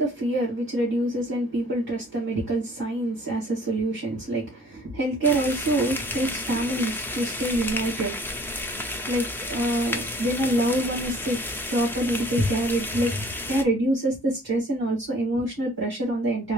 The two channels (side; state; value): both; normal; correlation 0.55